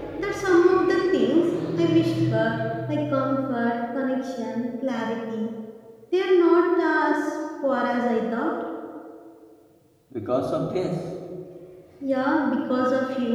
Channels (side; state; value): both; identical; correlation 1.00